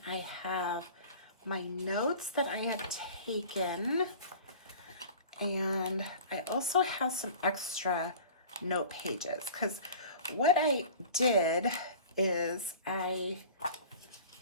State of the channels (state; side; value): inverted; both; correlation -0.42